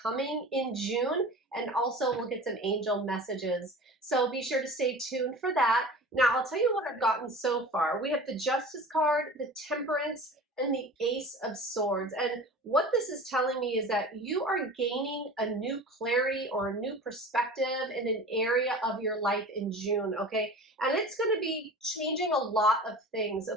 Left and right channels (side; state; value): both; normal; correlation 0.37